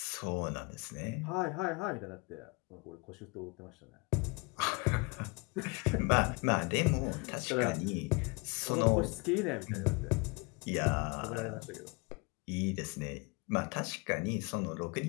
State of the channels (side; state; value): right; quieter; 28.4 dB